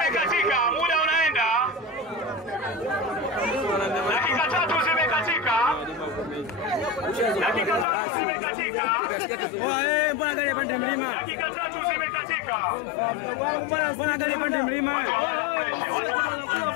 Muda unaenda. Dakika 3 zimekatika. Dakika 3 zimekatika. Mbona angalia pande mlima? Dakika 3 zimekatika. Mbona angalia pande mlima?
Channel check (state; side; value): drops out; right; at 7.9 s